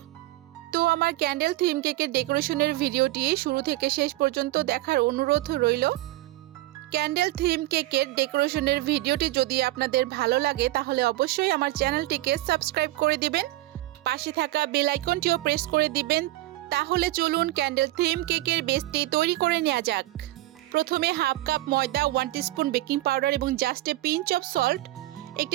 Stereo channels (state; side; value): quieter; left; 17.7 dB